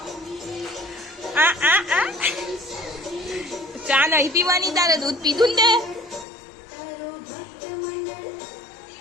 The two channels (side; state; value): right; drops out; at 6.2 s